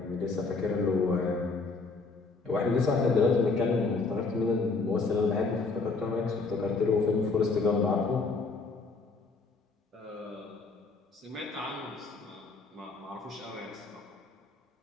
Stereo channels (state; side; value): quieter; right; 4.0 dB